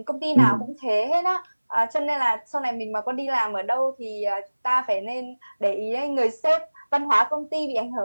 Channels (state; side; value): inverted; both; correlation -1.00